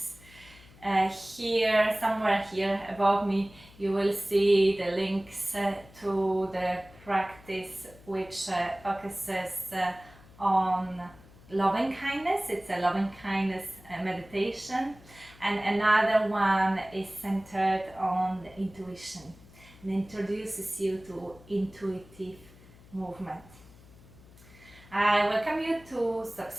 somewhere here above me, you will see the links to the practice which focuses on loving kindness. It's a loving kindness meditation, and another one is centered on the intuition and introduces you to intuitive movement. I welcome you to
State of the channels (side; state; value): left; noise; hum, 23 dB below the sound